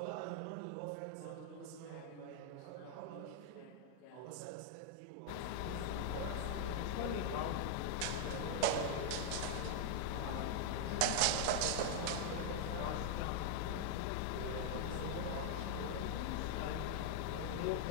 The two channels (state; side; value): different; both; correlation 0.00